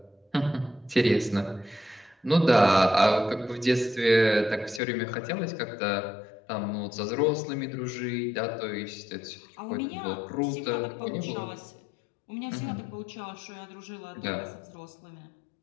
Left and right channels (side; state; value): right; drops out; at 4.8 s